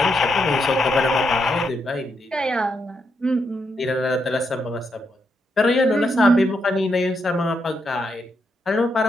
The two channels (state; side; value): normal; both; correlation 0.81